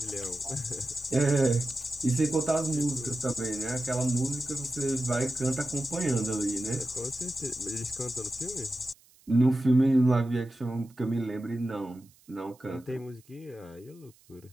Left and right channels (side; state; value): right; noise; hiss, 29 dB below the sound